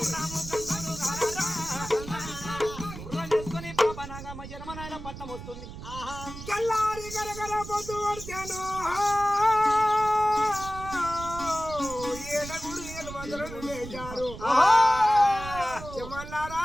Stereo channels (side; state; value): right; noise; rumble, 11 dB below the sound